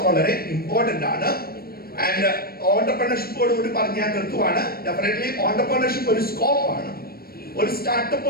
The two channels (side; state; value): right; late; 0.44 ms